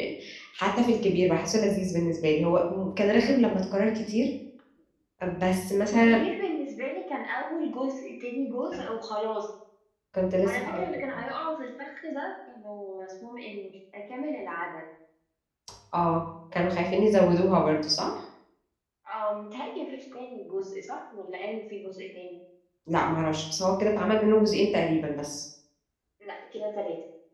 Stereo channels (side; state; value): both; identical; correlation 1.00